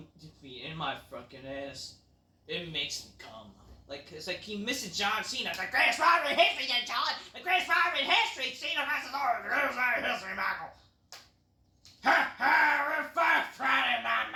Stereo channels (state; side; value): identical; both; correlation 1.00